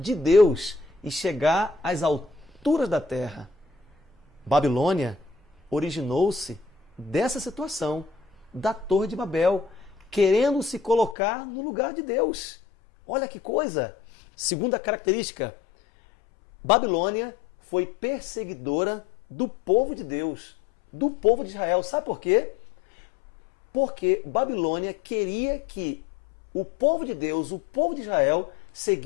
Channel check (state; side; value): drops out; right; at 11.2 s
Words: Deus e chegar às alturas da terra. Babilônia originou-se dessa situação, da Torre de Babel, querendo se colocar no lugar de Deus. Olha que coisa! Segunda característica, Babilônia foi perseguidora do povo de Deus, do povo de Israel. Sabe por quê? Porque Babilônia queria que o povo de Deus, o povo de Israel,